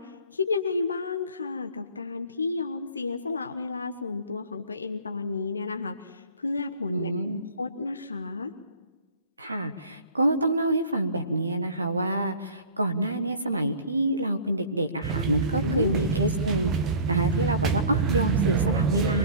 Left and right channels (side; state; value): both; inverted; correlation -0.43